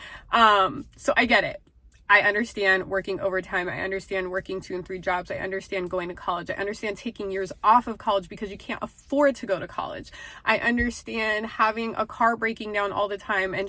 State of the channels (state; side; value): identical; both; correlation 1.00